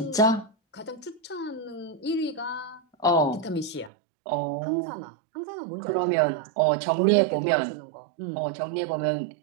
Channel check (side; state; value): left; drops out; at 3.9 s